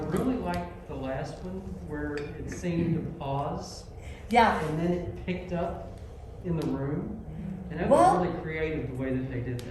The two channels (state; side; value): identical; both; correlation 1.00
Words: really liked the last one where it seemed to pause Yeah. and then it picked up in the room, and that Well, was really creative the way that they did